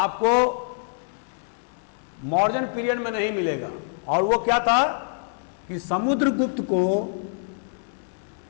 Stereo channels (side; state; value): right; silent; 61 dB below the other